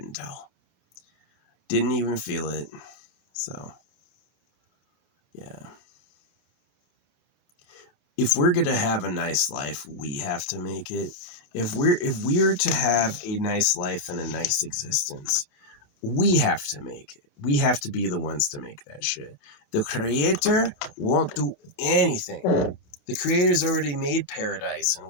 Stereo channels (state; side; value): late; right; 28 ms